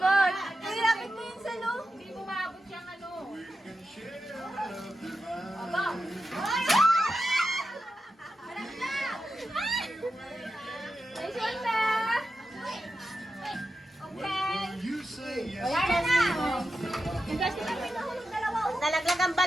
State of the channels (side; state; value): both; normal; correlation 0.90